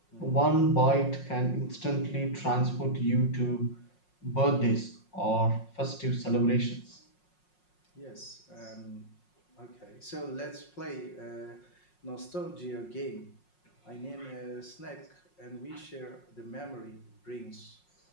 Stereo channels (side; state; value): right; late; 5.5 ms